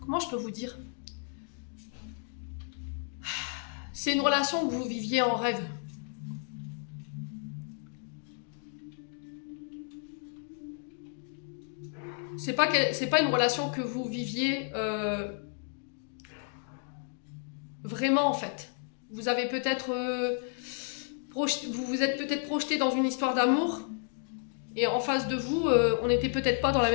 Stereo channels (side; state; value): right; silent; 56 dB below the other